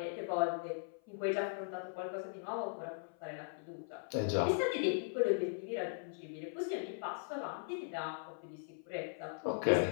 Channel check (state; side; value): silent; right; 52 dB below the other